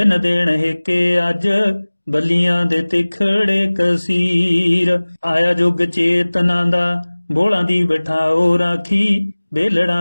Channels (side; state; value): both; inverted; correlation -1.00